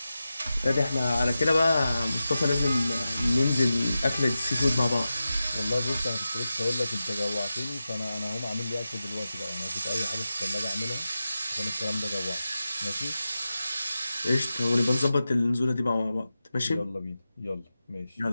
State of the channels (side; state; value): both; inverted; correlation -0.92